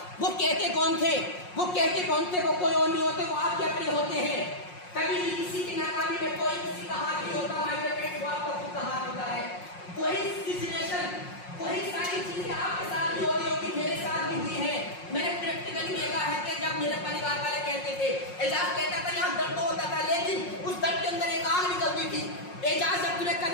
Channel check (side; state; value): right; late; 5.5 ms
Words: वो कहते कौन थे, वो कहते कौन थे, वो कोई और नहीं होते, वो आपके अपने होते हैं। कभी भी किसी की नाकामी में कोई किसी का हाथ नहीं होता, माय डियर फ्रेंड्स, वो आपका खुद का हाथ होता है। वही सिचुएशन, वही सारी चीजें आपके साथ भी हो रही होगी, मेरे साथ भी हुई है। मैंने प्रैक्टिकली देखा है कि जब मेरे परिवार वाले कहते थे, एजाज कहता था यहाँ दर्द होता था, लेकिन उस दर्द के अंदर एक आग निकलती थी। एजाज जब तूने